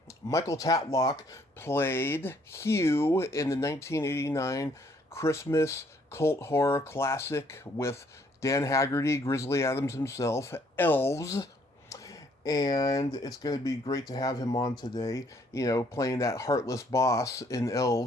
Michael Tatlock played Hugh in the 1989 Christmas cult horror classic with Dan Haggerty, Grizzly Adams himself, Elves, and it's going to be great to have him on today. You know, playing that heartless boss in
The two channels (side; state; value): both; normal; correlation 0.65